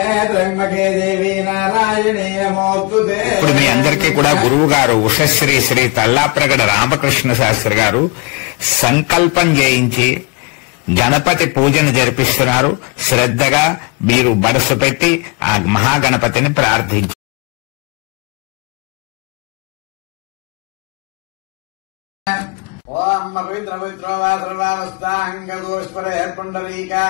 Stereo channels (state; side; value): quieter; right; 29.3 dB